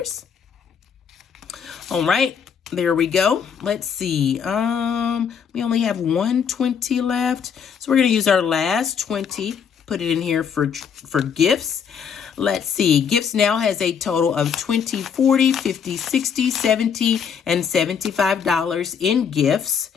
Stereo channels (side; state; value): right; quieter; 7.1 dB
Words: All right. There we go. Let's see. We only have 120 left. So we're going to use our last 20, put it in here for gifts. Let's see. Gifts now has a total of $20, $40, $50, $60, $70, and $75 in gifts.